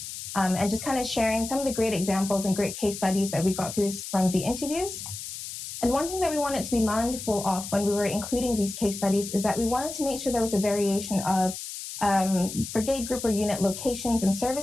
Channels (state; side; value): noise; left; hiss, 9 dB below the sound